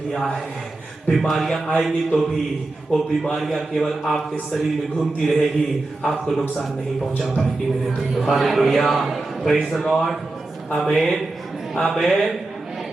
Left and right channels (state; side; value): quieter; left; 3.0 dB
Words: है, बीमारियां आएंगी तो भी वो बीमारियां केवल आपके शरीर में घूमती रहेगी, आपको नुकसान नहीं पहुंचा पाएगी मेरे प्रियो। हालेलुया, प्रेज़ द लॉर्ड, आमीन, आमीन।